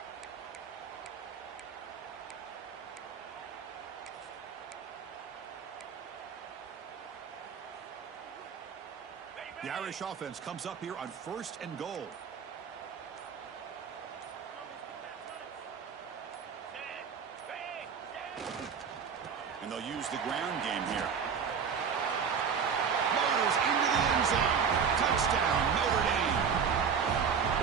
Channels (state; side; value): quieter; left; 6.6 dB